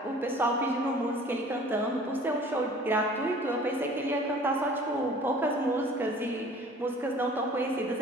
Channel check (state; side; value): normal; both; correlation 0.48